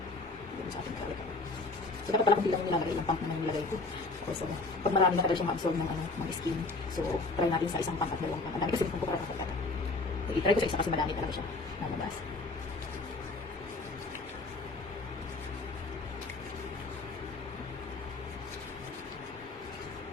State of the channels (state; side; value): quieter; right; 3.4 dB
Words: Sa ating kawit. So, dapat pala kung bilang yung nilagay, ilang pump naman yung nilagay ko. So, pag marami na talaga siyang ma-absorb ng skin. So, try natin sa isang pump at dalawang pump. Ang dami kasi kung para ako. So, itry ko sa isa kasi madami talaga siya. Nalabas.